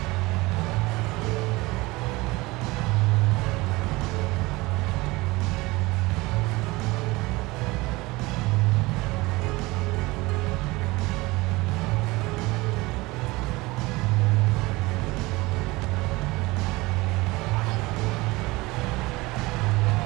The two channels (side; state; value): left; quieter; 22.0 dB